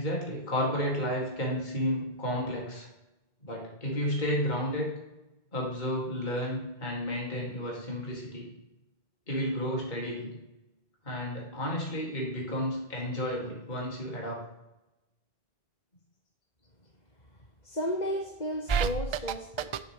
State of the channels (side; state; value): right; late; 1.4 ms